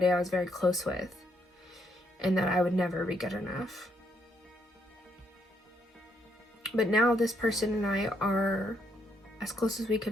I was very close with, and that I would never be good enough. But now this person and I are as close as we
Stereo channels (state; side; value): normal; both; correlation 0.74